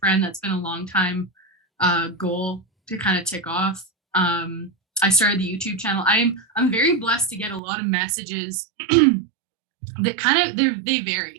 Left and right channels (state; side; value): drops out; left; at 7.6 s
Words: That's been a long time goal to kind of tick off. I started the YouTube channel. I'm very blessed to get a lot of messages that kind of they